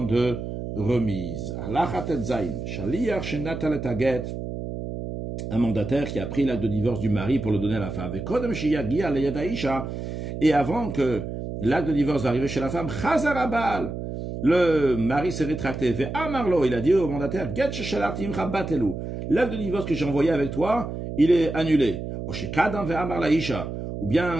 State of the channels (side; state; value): right; noise; hum, 6 dB below the sound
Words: de remise. Un mandataire qui a pris l'acte de divorce du mari pour le donner à la femme. Et avant que l'acte de divorce arrive chez la femme, le mari s'est rétracté. Il a dit au mandataire, l'acte de divorce que j'ai envoyé avec toi, il est annulé. Ou bien